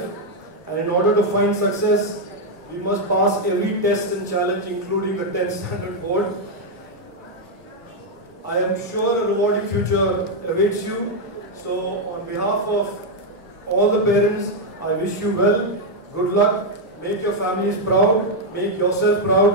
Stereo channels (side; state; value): both; normal; correlation 0.01